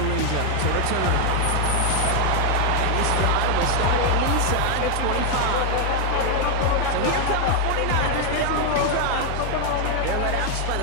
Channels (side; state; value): both; different; correlation 0.01